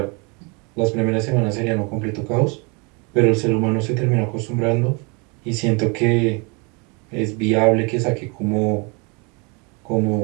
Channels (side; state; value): left; quieter; 31.4 dB